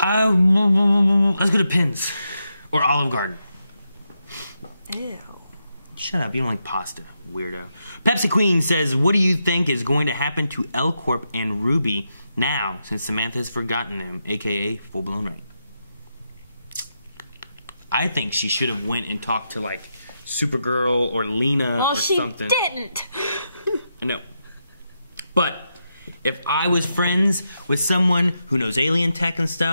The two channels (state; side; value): inverted; both; correlation -0.85